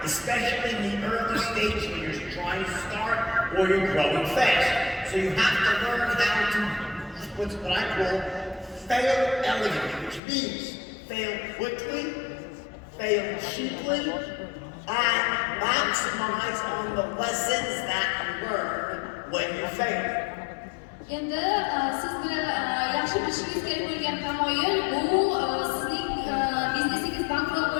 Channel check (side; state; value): right; drops out; at 10.2 s